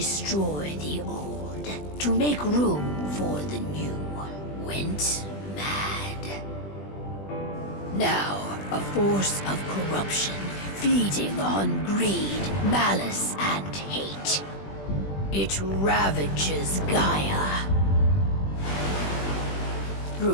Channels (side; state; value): right; late; 20 ms